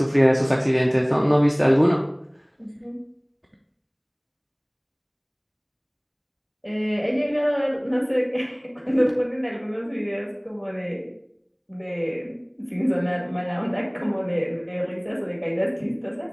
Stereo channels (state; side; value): identical; both; correlation 1.00